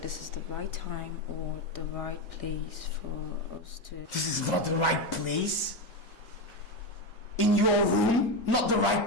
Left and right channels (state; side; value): normal; both; correlation 0.14